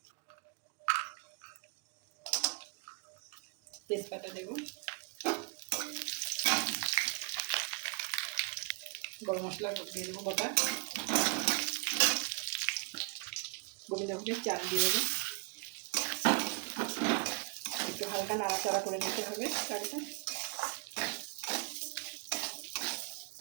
তেজপাতা দেব, গরম মশলা দিয়ে দেবো গোটা, গোবিন্দভোগের চাল দিয়ে দেবো। একটু হালকা নাড়াচাড়া করে নিতে হবে চালটা।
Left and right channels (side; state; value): left; quieter; 32.9 dB